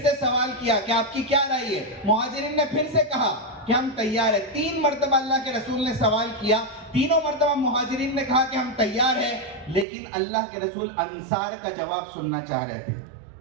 सवाल किया कि आपकी क्या राय है। मुहाजिरीन ने फिर से कहा कि हम तैयार है। 3 मरतबा अल्लाह के रसूल ने सवाल किया, तीनों मरतबा मुहाजिरीन ने कहा कि हम तैयार है, लेकिन अल्लाह के रसूल अंसार का जवाब सुनना चाह रहे थे।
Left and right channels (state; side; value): drops out; left; at 9.9 s